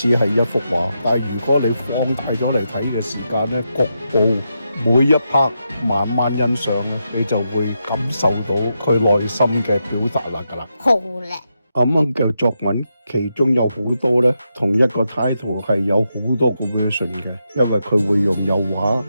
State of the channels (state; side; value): inverted; both; correlation -0.85